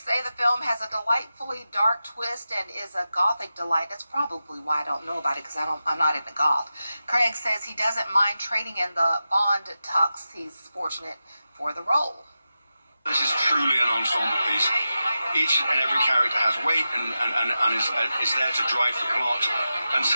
say the film has a delightfully dark twist and is a gothic delight. That's probably why I don't know about it, because I'm not into goth. Craig says he doesn't mind trading in the Bond tux. He's fortunate for the role. This is truly an ensemble piece. Each and every character has weight and is there to drive the plot. And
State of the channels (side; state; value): both; inverted; correlation -0.92